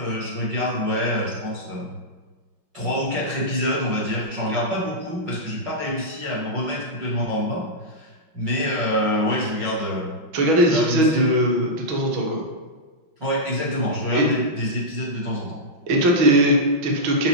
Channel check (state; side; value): late; left; 5.5 ms